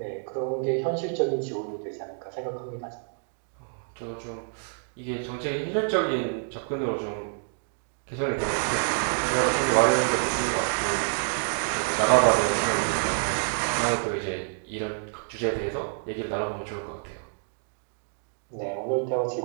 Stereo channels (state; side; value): silent; left; 59 dB below the other